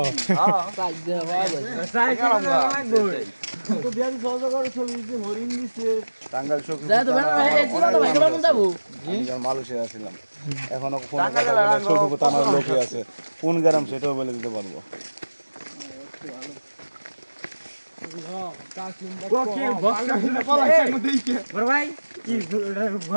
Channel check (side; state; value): both; inverted; correlation -1.00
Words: সাইড দে হবে সাইড লাগবে তো বিয়ারি সহজ করে ছবি দিতে হরিণ দিছে টাঙ্গাইল সখীপুর যাই তো বেন এই চিলা তো ভাই কেমন যাবো আমি মালয়েশিয়া ছিলাম এখনো ফোন সখীপুর থানার লোকে আছে কোন গ্রাম সেটাও বলে দিতে পারবো